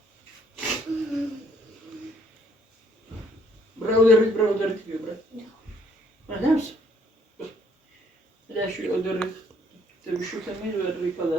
brother diyor bırak. Ne yapsın? şu ödürü tabii şu temel ve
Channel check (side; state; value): both; normal; correlation 0.65